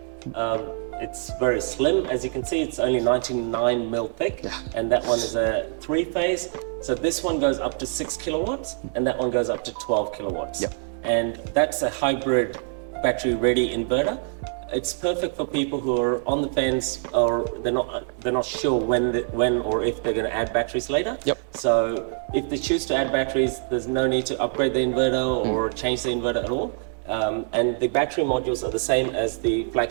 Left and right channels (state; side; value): silent; left; 62 dB below the other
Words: It's very slim. As you can see, it's only 99 mil thick, and that one is a 3-phase. So this one goes up to 6 kilowatts, and that one goes up to 12 kilowatts. Yep. And that's a hybrid battery-ready inverter. It's perfect for people who are on the fence or they're not sure when or if they're going to add batteries later. Yep. So if they choose to add batteries, there's no need to upgrade the inverter or change the inverter at all. And the battery modules are the same as the